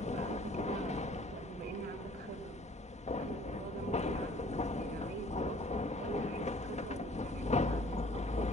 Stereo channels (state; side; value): normal; both; correlation 0.54